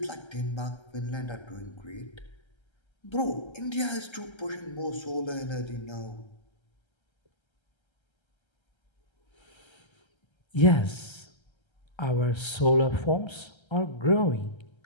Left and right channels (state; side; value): late; right; 1.3 ms